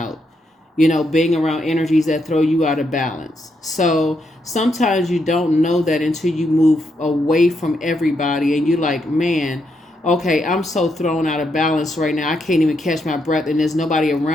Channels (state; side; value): normal; both; correlation 0.79